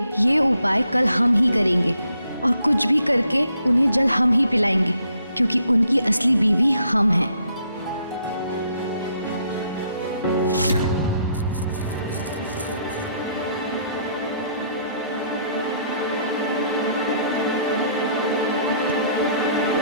ये उपाय कल हम ही करेंगे और कुछ भी करके उन्हें जल हम ही पिलाएंगे, क्योंकि उनकी असली बीवी हम हैं।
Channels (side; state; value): both; inverted; correlation -0.69